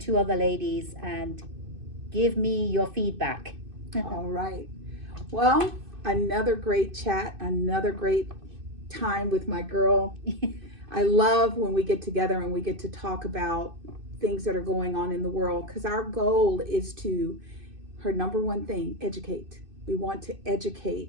other ladies and give me your feedback. All right. Well, another great chat, another great time with my girl. I love when we get together and we get to talk about things that are going on in the world, because our goal is her number one thing, educate. We want to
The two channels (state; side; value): late; left; 2.6 ms